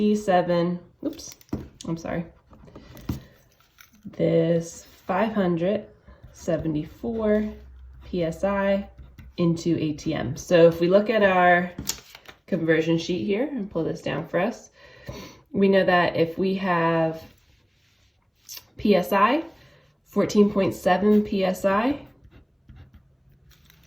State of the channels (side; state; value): both; identical; correlation 1.00